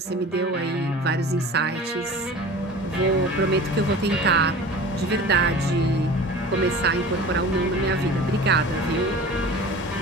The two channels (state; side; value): normal; both; correlation 0.39